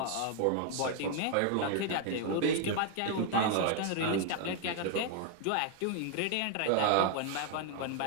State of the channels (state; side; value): different; both; correlation 0.00